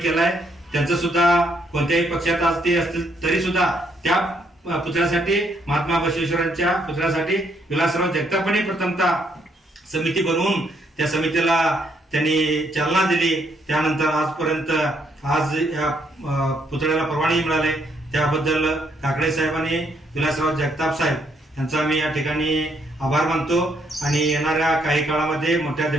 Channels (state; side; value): normal; both; correlation 0.72